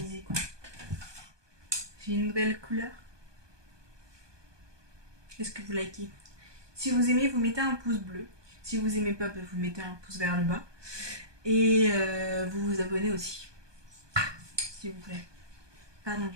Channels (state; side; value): late; left; 1.2 ms